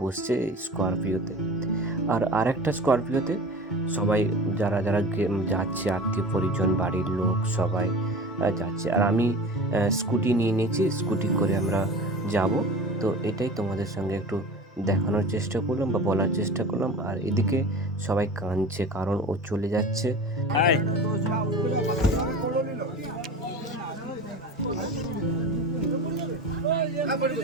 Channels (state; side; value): normal; both; correlation 0.35